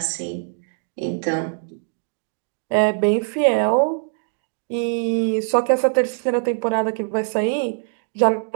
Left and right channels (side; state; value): left; silent; 64 dB below the other